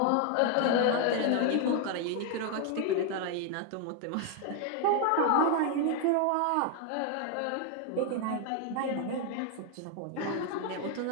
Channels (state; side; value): different; both; correlation 0.01